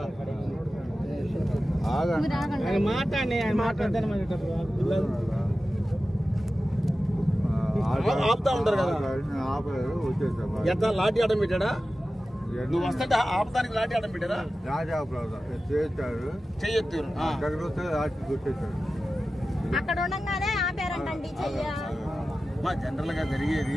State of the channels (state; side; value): normal; both; correlation 0.94